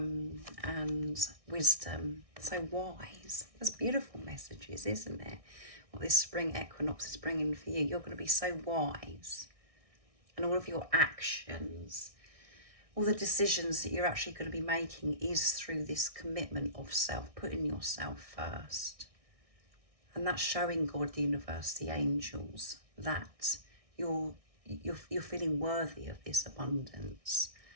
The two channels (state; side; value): late; left; 1.6 ms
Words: wisdom, so wise. That's beautiful messages, isn't it? What this spring equinox is bringing for you. You're going to be so wise. And all of your actions, all the decisions that you're actually going to be making is through this commitment of self, putting yourself first. And that's showing God, the universe, the angels, that you're feeling worthy of this abundance,